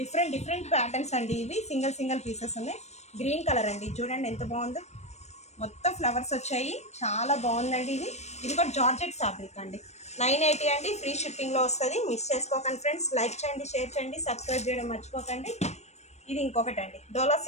డిఫరెంట్ ప్యాటర్న్స్ అండి. ఇవి సింగిల్ పీసెస్ ఉన్నాయి. గ్రీన్ కలర్ అండి, చూడండి ఎంత బాగుందో, మొత్తం ఫ్లవర్స్ వచ్చాయి, చాలా బాగుందండి. ఇది కూడా జార్జెట్ ఫ్యాబ్రిక్ అండి. 980 అండి, ఫ్రీ షిప్పింగ్లో వస్తుంది. మిస్ చేసుకోకండి ఫ్రెండ్స్. లైక్ చేయండి, షేర్ చేయండి, సబ్స్క్రైబ్ చేయడం మర్చిపోకండి. ఇది ఇంకొకటి అండి, డోలా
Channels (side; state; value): right; late; 0.32 ms